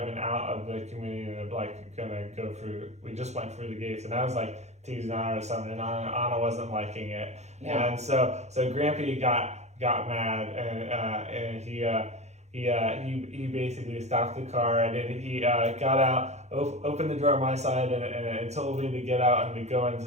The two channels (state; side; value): late; left; 0.33 ms